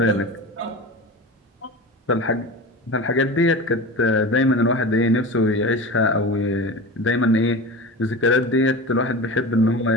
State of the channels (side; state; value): both; normal; correlation 0.30